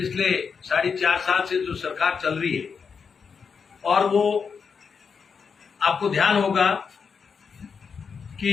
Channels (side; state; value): right; quieter; 5.9 dB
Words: 4.5 साल से जो सरकार चल रही है, और वो आपको ध्यान होगा कि